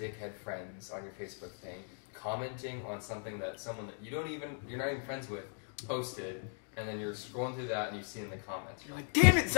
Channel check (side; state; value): right; silent; 53 dB below the other